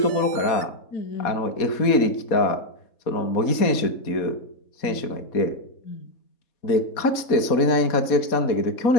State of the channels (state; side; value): late; right; 4.2 ms